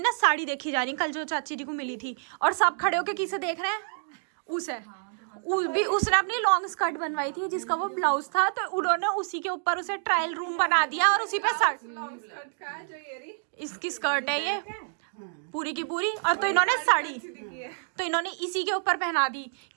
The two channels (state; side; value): silent; left; digital silence